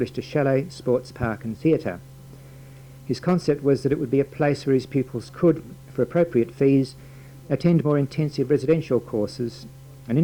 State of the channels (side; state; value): both; identical; correlation 1.00